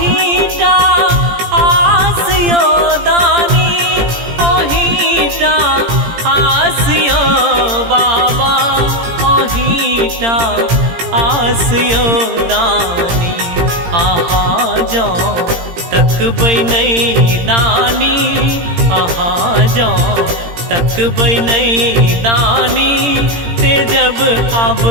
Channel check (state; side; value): late; left; 17 ms